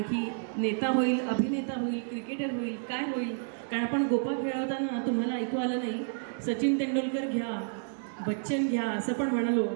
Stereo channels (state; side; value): silent; left; digital silence